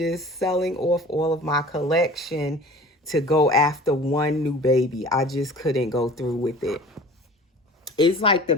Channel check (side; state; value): both; normal; correlation 0.43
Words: selling off all of my collection to go after one new baby. I just couldn't go through with it. It's like the